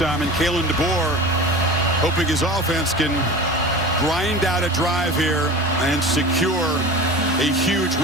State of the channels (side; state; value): both; normal; correlation 0.35